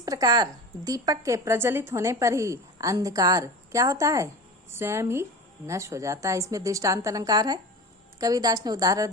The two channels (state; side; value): normal; both; correlation 0.31